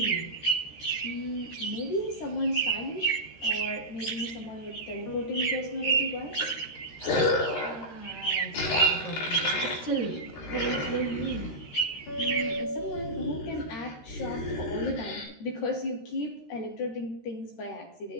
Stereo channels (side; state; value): right; late; 13 ms